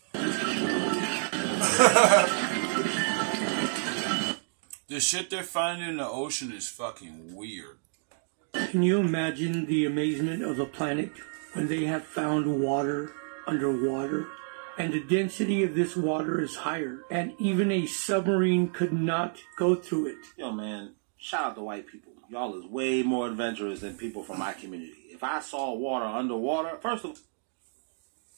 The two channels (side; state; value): left; silent; 58 dB below the other